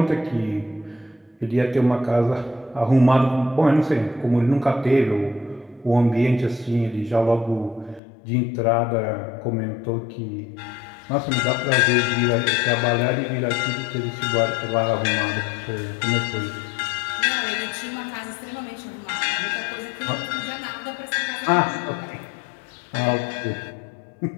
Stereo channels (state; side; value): drops out; right; at 8.0 s